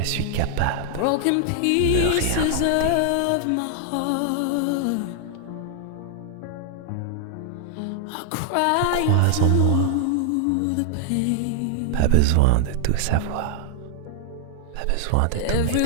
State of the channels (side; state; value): both; different; correlation 0.00